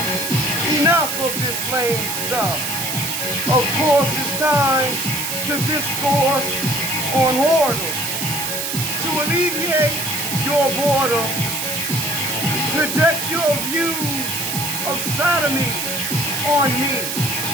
enough of this lame stuff. Of course, it's time to discourse on whoredom. To alleviate your boredom, project your views of sodomy on me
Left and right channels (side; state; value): right; noise; hiss, 2 dB below the sound